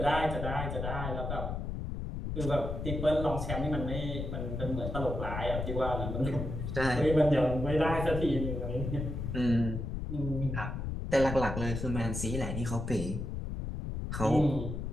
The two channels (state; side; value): noise; left; rumble, 4 dB below the sound